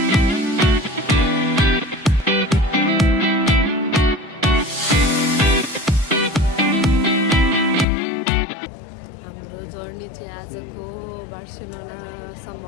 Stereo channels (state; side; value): drops out; right; at 7.9 s